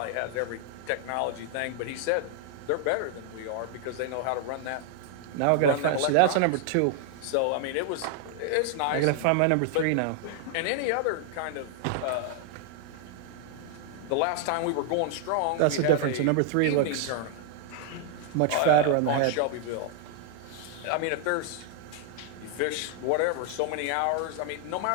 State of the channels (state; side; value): different; both; correlation 0.00